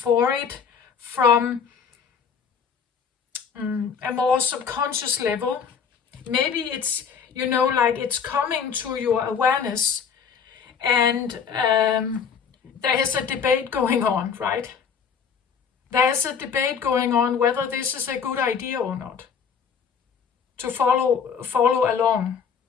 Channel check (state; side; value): quieter; right; 6.7 dB